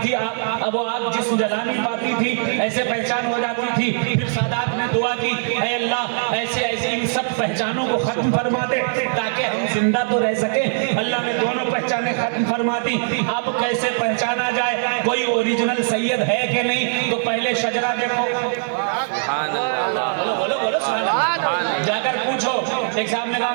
थी, अब वो आग जिस्म जला नहीं पाती थी, ऐसे पहचान हो जाती थी। फिर सादात ने दुआ की, ऐ अल्लाह ऐसे ऐसे इन सब पहचानों को खत्म फरमा दे ताकि हम जिंदा तो रह सके। अल्लाह ने दोनों पहचानें खत्म फरमा दी। अब कैसे पहचाना जाए कोई ओरिजिनल सैयद है कि नहीं? तो पहले शजरा देखो, बोलो बोलो बोलो, जाकर पूछो। एक साहब ने कहा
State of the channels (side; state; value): left; silent; 63 dB below the other